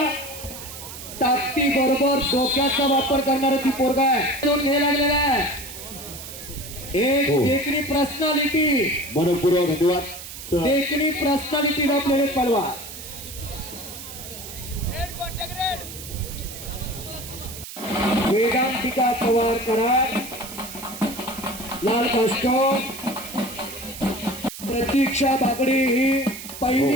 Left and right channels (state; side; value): noise; right; hiss, 12 dB below the sound